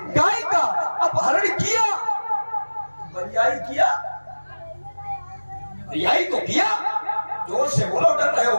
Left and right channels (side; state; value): both; inverted; correlation -1.00